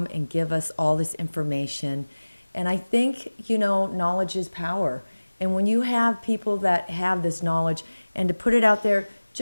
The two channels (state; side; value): inverted; both; correlation -1.00